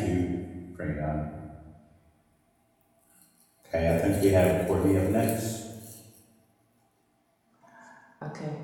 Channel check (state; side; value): identical; both; correlation 1.00